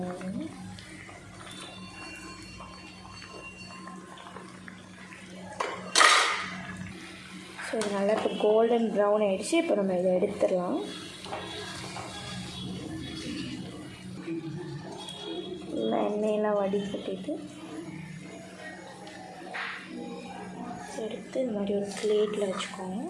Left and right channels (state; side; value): identical; both; correlation 1.00